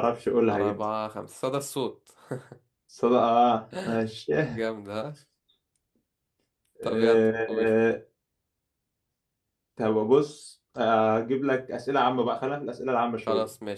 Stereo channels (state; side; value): identical; both; correlation 1.00